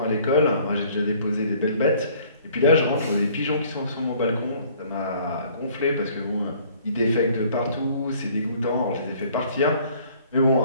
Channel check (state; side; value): inverted; both; correlation -0.56